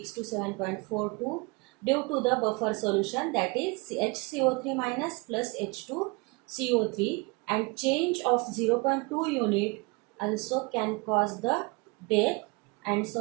to 7.42 due to the buffer solution, that is HCO3 minus plus H2CO3, and change of 0.2 unit also can cause the death. And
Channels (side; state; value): left; quieter; 28.1 dB